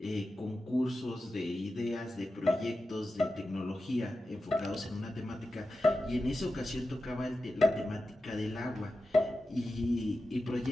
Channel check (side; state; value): both; normal; correlation 0.91